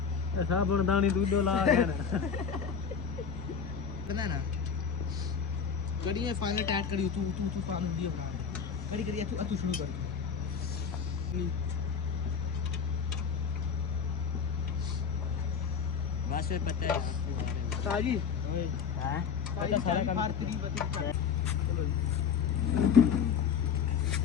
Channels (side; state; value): right; quieter; 6.6 dB